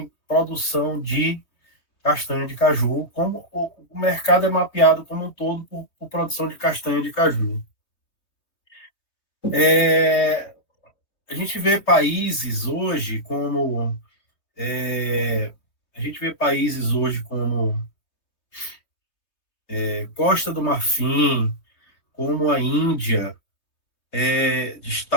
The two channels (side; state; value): right; late; 3.2 ms